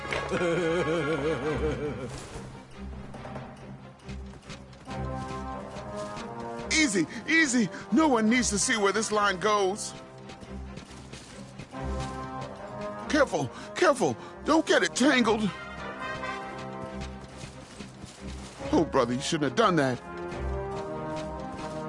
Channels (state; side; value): identical; both; correlation 1.00